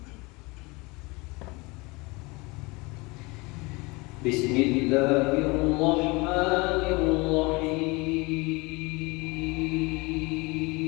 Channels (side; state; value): right; quieter; 25.4 dB